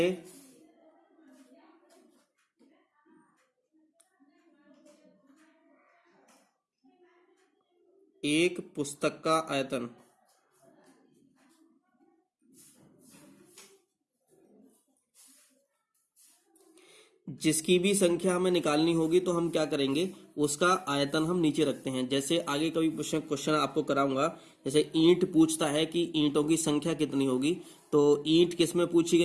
एक पुस्तक का आयतन। जिसकी भी संख्या हमें निकालनी होगी तो हम क्या करेंगे, उसका आयतन हम नीचे रखते हैं। जैसे आगे कभी क्वेश्चन आपको कराऊंगा, जैसे ईंट पूछता है कि ईंटों की संख्या कितनी होगी, तो ईंट किस में पूछी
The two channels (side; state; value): both; identical; correlation 1.00